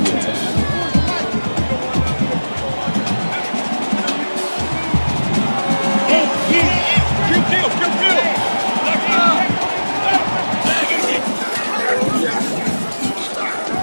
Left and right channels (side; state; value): both; inverted; correlation -1.00